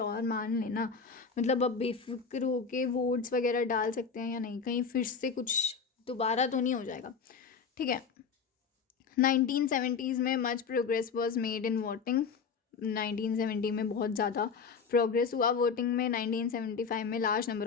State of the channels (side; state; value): right; quieter; 5.7 dB